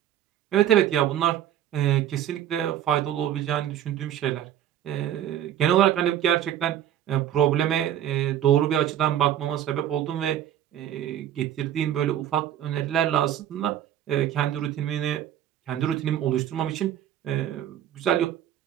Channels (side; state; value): left; quieter; 11.1 dB